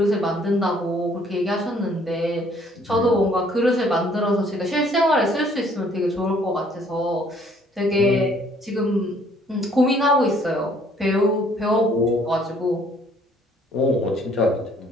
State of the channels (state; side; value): normal; both; correlation 0.61